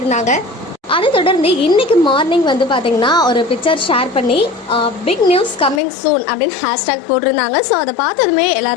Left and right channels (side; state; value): right; drops out; at 5.8 s